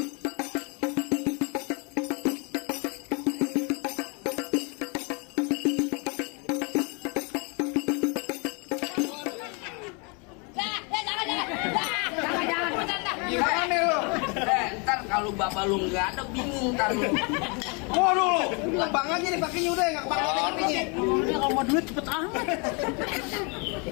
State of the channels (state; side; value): quieter; right; 33.0 dB